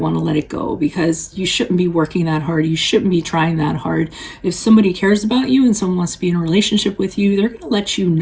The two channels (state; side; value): identical; both; correlation 1.00